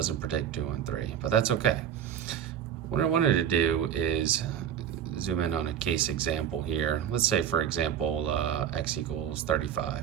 predict 2 and 3, but that's okay. What I wanted to do is zoom in on a case example here. Let's say, for example, x equals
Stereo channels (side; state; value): left; quieter; 9.2 dB